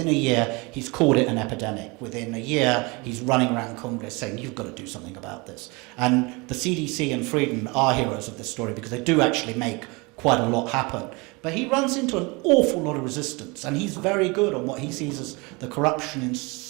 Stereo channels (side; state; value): left; quieter; 27.0 dB